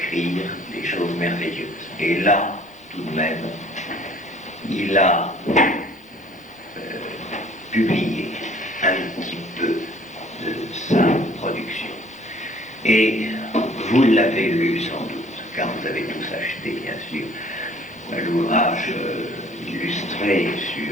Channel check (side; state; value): both; normal; correlation 0.54